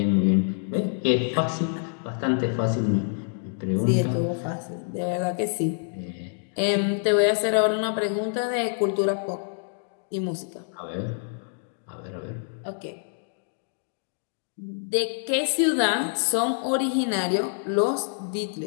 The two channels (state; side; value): silent; right; digital silence